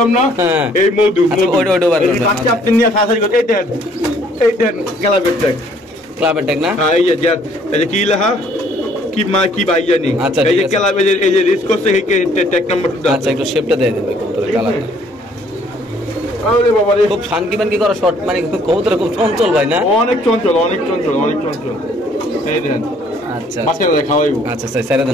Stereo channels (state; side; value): normal; both; correlation 0.61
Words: না হ্যাঁ। এই মধু আচ্ছা, ওইটা বার করবেন। বাচ্চা আপনি নিয়ে শাসারি করতে এই দেন গেলাবের ট্যাগ ক্লাবের ট্যাগ না হ্যাঁ এই যে এই যে কি লেখা কি মা কি ভাই জানি আচ্ছা, এই ঠিক যে আছে। গেলাবের এই যে রিস্ক করছে এই ট্যাগ নাম্বার আচ্ছা একটু শেপটা দিয়ে দেবে কবুতরের কালারটা আরে বাবা রে খুব শানকি মানকি করা শর্ট মানে কবুতর খুব চঞ্চল ভাই না অনেক চঞ্চল অনেক চঞ্চল অনেক চঞ্চল এই দেখেন আচ্ছা বাচ্চারা খাওয়াইবো আচ্ছা স্যার ছেড়ে